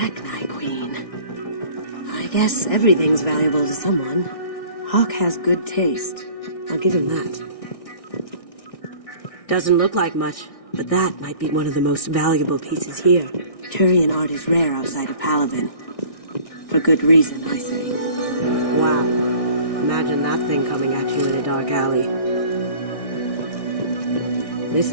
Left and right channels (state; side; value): late; right; 1.6 ms